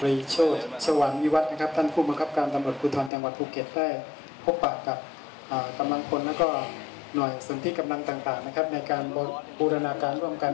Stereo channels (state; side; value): drops out; right; at 3.1 s